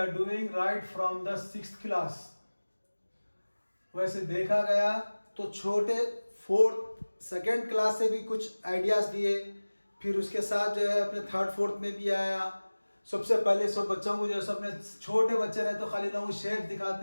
doing right from the 6th class. वैसे देखा गया तो छोटे 4th सेकेंड क्लास से भी कुछ आइडियाज़ दिए, फिर उसके साथ जो है अपने 3rd 4th में भी आया. सबसे पहले सब बच्चों को जो है अपने छोटे बच्चे रहे तो खाली ना वो शेप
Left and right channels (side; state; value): both; inverted; correlation -1.00